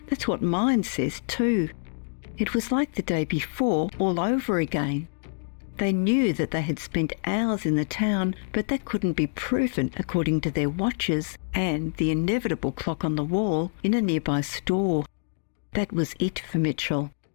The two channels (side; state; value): right; silent; digital silence